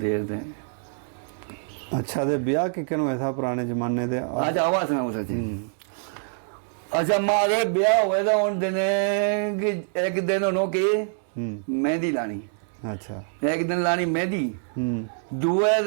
ਤੇ ਅੱਛਾ ਤੇ ਵਿਆਹ ਕਿਕਨ ਹੋਇਆ ਥਾ ਪੁਰਾਣੇ ਜ਼ਮਾਨੇ ਦੇ ਅੱਜ ਆਵਾਜ਼ ਸੁਣਾਓ ਸੱਚੀ ਅੱਛਾ ਮਾਰੇ ਵਿਆਹ ਹੋਏ ਤਾਂ ਹੁਣ ਦਿਨੇ ਕਿ ਇੱਕ ਦਿਨ ਉਹਨੋਂ ਕਿ ਮਹਿੰਦੀ ਲਾਣੀ ਅੱਛਾ ਇੱਕ ਦਿਨ ਲਾਣੀ ਮਹਿੰਦੀ ਹੂੰ ਦੂਏ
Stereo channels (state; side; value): silent; left; digital silence